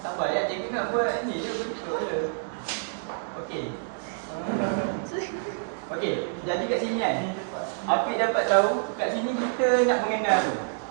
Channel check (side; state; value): left; silent; digital silence